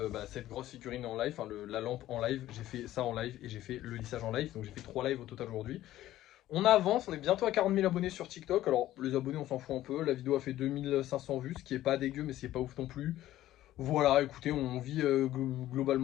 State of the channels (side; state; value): right; quieter; 14.2 dB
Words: cette grosse figurine en live, enfin la lampe en live, j'ai fait ça en live et j'ai fait le lissage en live, donc j'ai fait 3 lives au total aujourd'hui. On avance, on est bientôt à 40 000 abonnés sur TikTok, alors les abonnés on s'en fout un peu, la vidéo a fait 2500 vues, ce qui est pas dégueu mais c'est pas ouf non plus. Voilà, écoutez, on vit